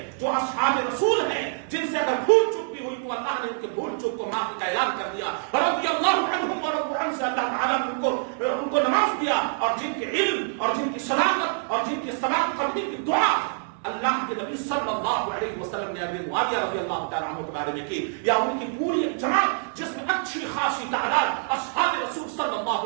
جو اصحاب رسول ہیں جن سے اگر بھول چک بھی ہوئی تو اللہ نے ان کے بھول چک کو معافی کا اعلان کر دیا، رضی اللہ عنہم ورضوا عنہ سے اللہ تعالیٰ نے ان کو نواز دیا، اور جن کے علم اور جن کی صداقت اور جن کی ثبات قلبی کی دعا اللہ کے نبی صلی اللہ علیہ وسلم نے امیر معاویہ رضی اللہ تعالیٰ عنہ کے بارے میں کی، یا ان کی پوری جماعت جس میں اچھی خاصی تعداد اصحاب رسول صلی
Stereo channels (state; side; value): silent; left; digital silence